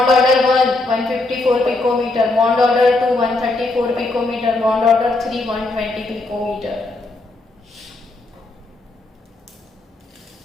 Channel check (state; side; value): quieter; right; 3.0 dB